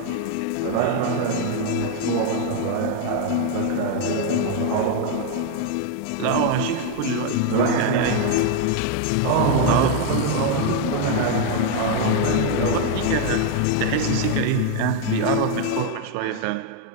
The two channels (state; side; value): different; both; correlation 0.01